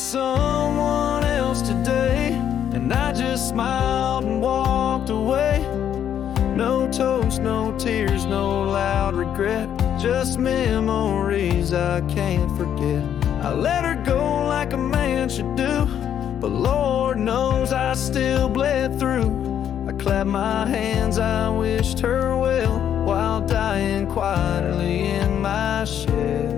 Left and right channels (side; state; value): right; quieter; 9.6 dB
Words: else today, and I just smiled and walked away. No toast, no tears, no loud regret, just memories I can't forget. I let her go like a man should do, but Lord knows I still bled through. I clapped my hands, I wished her well, while dying quietly in my